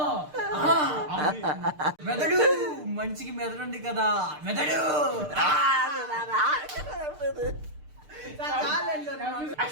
మెదడు. మనిషికి మెదడు ఉంది కదా. మెదడు.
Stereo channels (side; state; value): left; late; 6.6 ms